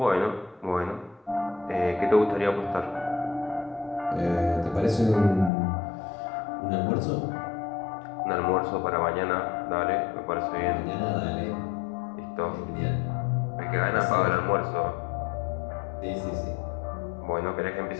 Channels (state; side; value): drops out; right; at 5.5 s